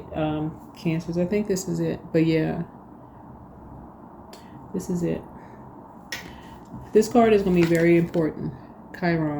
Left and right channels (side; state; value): both; identical; correlation 1.00